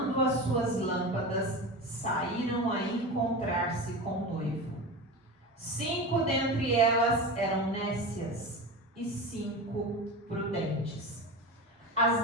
as suas lâmpadas, saíram a encontrar-se com o noivo. 5 dentre elas eram nécias e 5 prudentes.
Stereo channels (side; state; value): both; normal; correlation 0.26